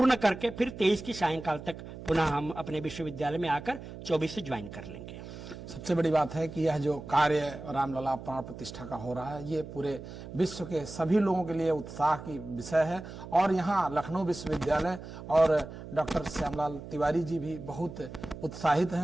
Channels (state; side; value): noise; right; hum, 12 dB below the sound